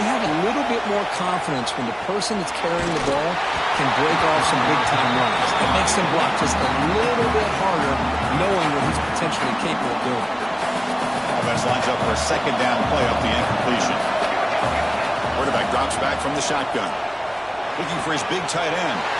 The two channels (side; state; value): both; identical; correlation 1.00